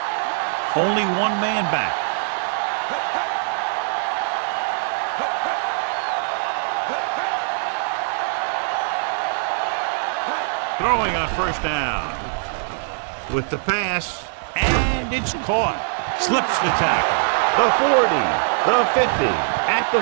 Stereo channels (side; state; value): left; silent; digital silence